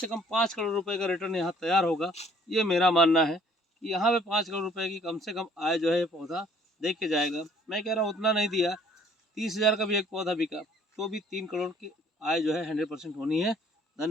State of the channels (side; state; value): both; normal; correlation 0.58